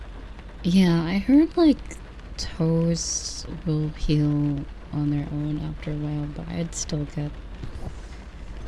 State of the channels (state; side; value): identical; both; correlation 1.00